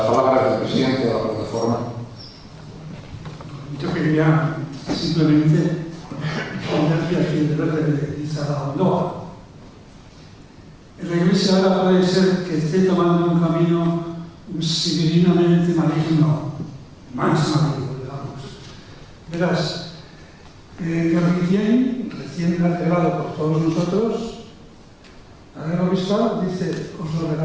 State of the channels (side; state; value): both; identical; correlation 1.00